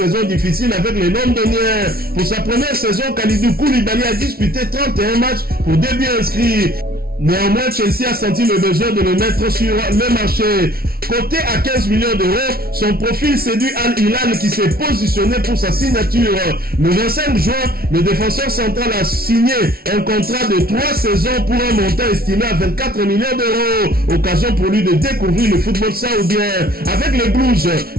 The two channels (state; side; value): late; left; 0.44 ms